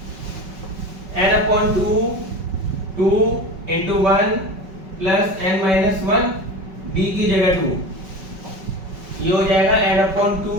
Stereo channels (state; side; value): late; left; 5.3 ms